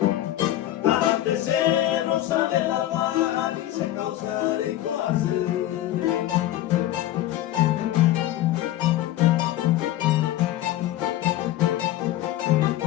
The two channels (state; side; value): quieter; right; 13.8 dB